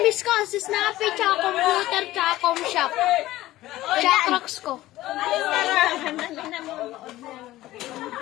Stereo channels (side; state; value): right; quieter; 16.1 dB